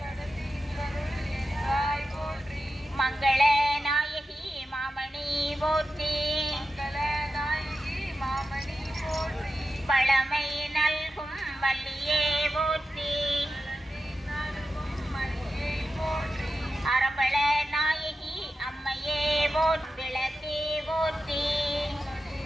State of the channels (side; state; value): both; normal; correlation 0.91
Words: மங்கள நாயகி மாமணி போற்றி. பழமை நல்கும் வள்ளியே போற்றி. அரபள நாயகி அம்மையே விளக்கே போற்றி.